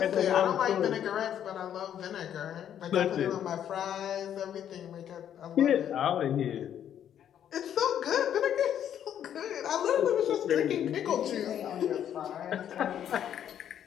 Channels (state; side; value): quieter; right; 9.9 dB